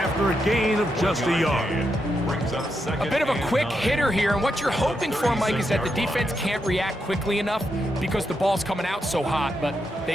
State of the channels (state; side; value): normal; both; correlation 0.83